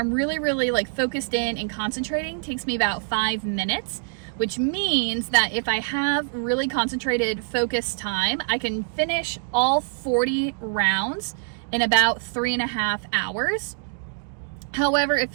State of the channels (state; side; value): silent; left; digital silence